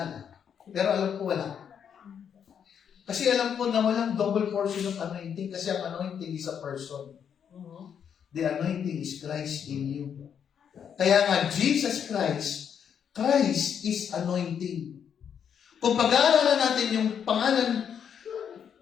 Pero alam ko wala. Kasi alam ko na walang double portion of anointing kasi ang anointing is a person. The anointing is Christ in you. Kaya nga, Jesus Christ is anointing. Kung pag-aaralan natin yung pangalan,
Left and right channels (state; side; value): quieter; right; 8.0 dB